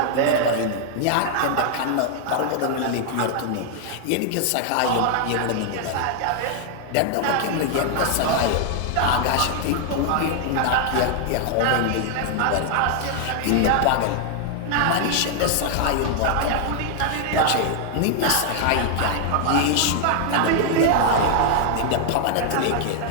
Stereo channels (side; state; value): both; different; correlation 0.00